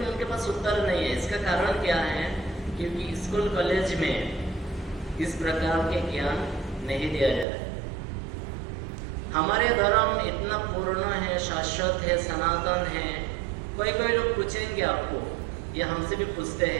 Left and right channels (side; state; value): left; drops out; at 7.5 s